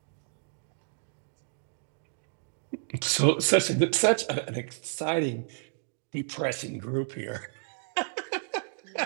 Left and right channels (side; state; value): left; silent; digital silence